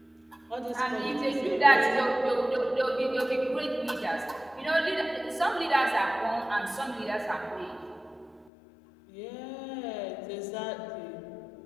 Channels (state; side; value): drops out; right; at 8.5 s